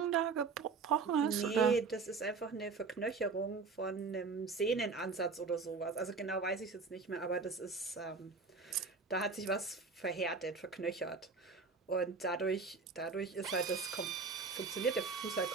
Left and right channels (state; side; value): quieter; left; 4.5 dB